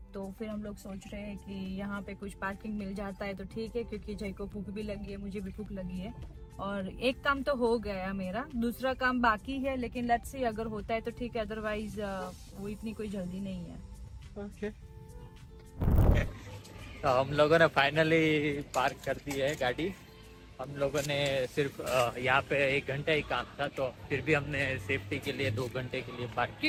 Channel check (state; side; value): identical; both; correlation 1.00